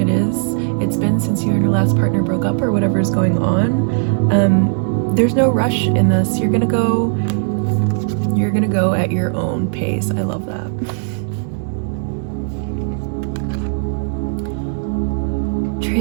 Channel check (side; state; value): left; silent; digital silence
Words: it's been since you and your last partner broke up or whatever is going on. There's no rush in this. You're gonna go at your own pace. I love that.